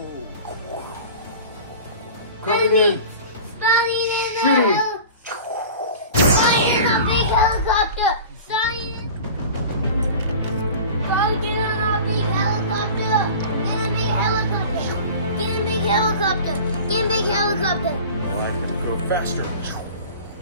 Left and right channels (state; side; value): inverted; both; correlation -0.39